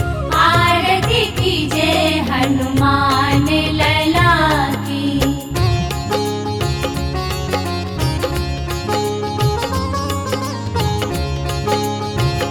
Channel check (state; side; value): identical; both; correlation 1.00